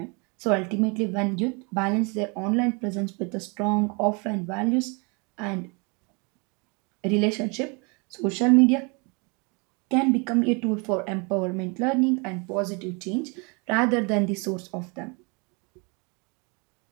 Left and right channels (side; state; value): left; quieter; 31.7 dB